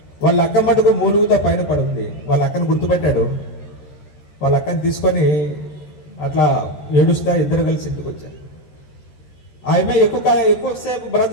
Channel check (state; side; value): late; right; 13 ms